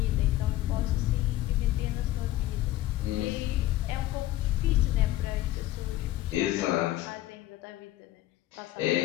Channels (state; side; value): quieter; right; 15.0 dB